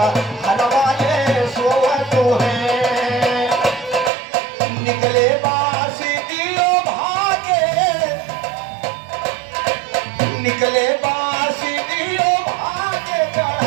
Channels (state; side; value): drops out; left; at 4.1 s